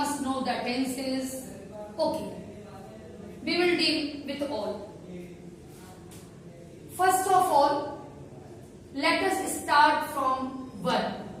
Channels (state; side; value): identical; both; correlation 1.00